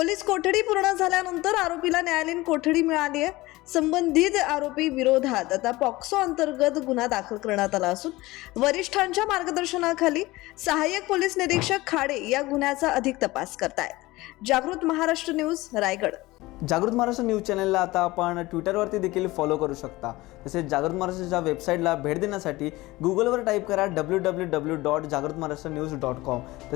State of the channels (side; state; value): right; quieter; 19.8 dB